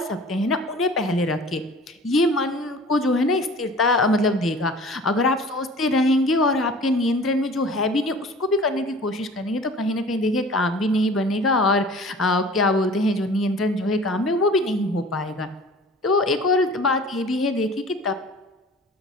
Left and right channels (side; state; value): both; normal; correlation 0.44